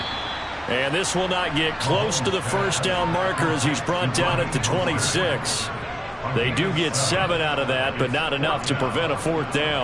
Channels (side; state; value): both; identical; correlation 1.00